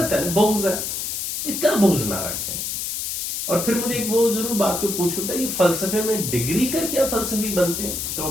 ہے، بغض ہے، اتنا بغض نہ رکھیں۔ اور پھر مجھے ایک وہ ضرور بات کو پوچھتا ہے، یہ فلسفے میں ڈگری کر کیا فلسفی بنتے ہیں، تو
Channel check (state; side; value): noise; left; hiss, 3 dB below the sound